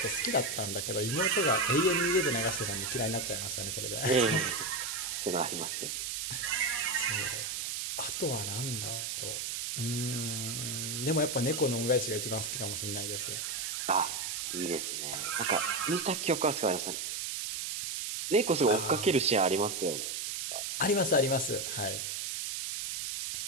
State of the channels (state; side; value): noise; right; hiss, 3 dB below the sound